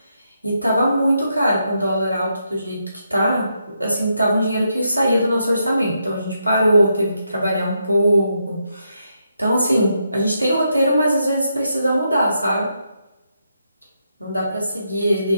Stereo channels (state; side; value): inverted; both; correlation -0.81